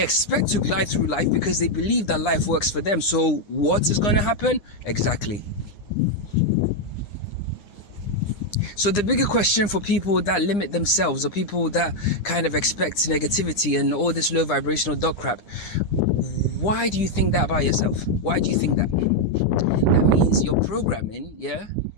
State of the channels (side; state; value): right; late; 9.8 ms